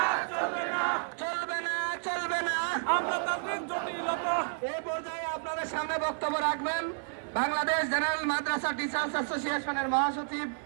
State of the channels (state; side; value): silent; left; 57 dB below the other